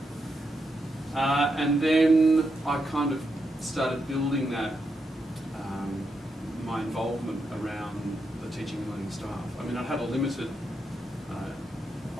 And then I kind of started building that, my involvement around the teaching and learning staff. I mean, I had a limited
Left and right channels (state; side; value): normal; both; correlation 0.84